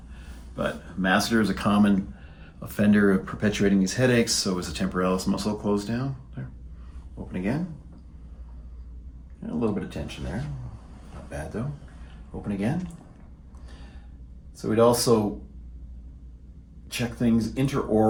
But masseter is a common offender of perpetuating these headaches, so is the temporalis muscle closed down. There. Open again. And a little bit of tension there. Not bad though. Open again. So we'd also check things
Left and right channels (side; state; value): both; identical; correlation 1.00